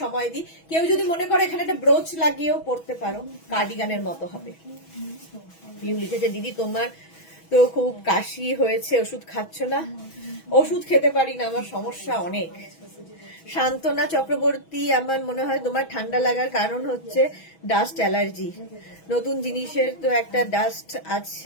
দিই। কেউ যদি মনে করে এখানে একটা ব্রোচ লাগিয়েও পড়তে পারো, কার্ডিগানের মতো হবে। পিউ লিখেছে দিদি তোমার তো খুব কাশি হয়েছে, ওষুধ খাচ্ছ না? ওষুধ খেতে পারি না, আমার সমস্যা অনেক। শান্তনা চক্রবর্তী, আমার মনে হয় তোমার ঠান্ডা লাগার কারণ হচ্ছে ডাস্ট অ্যালার্জি। নতুন জিনিসের তো একটা ডাস্ট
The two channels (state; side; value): late; right; 6.2 ms